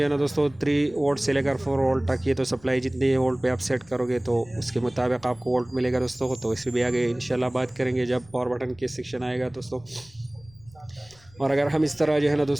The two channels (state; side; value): noise; left; rumble, 26 dB below the sound